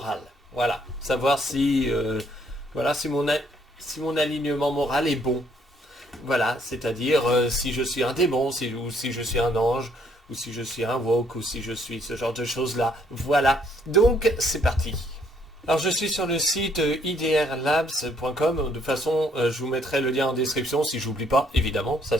Voilà, savoir si, voilà, si mon alignement moral est bon. Voilà, c'est-à-dire si je suis un démon, ou si je suis un ange, ou si je suis un woke, ou si je suis ce genre de choses-là. Voilà, donc c'est parti. Alors je suis sur le site idrlabs.com, de toute façon je vous mettrai le lien en description si j'oublie pas, évidemment, ça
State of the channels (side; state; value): both; normal; correlation 0.67